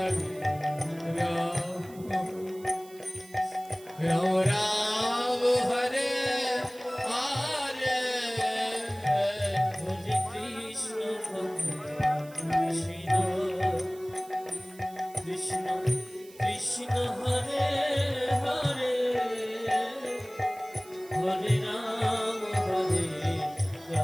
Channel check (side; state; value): right; noise; hiss, 22 dB below the sound